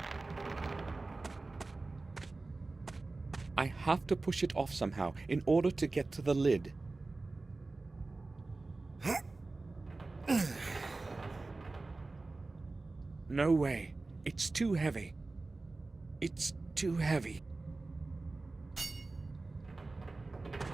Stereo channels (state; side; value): quieter; left; 3.4 dB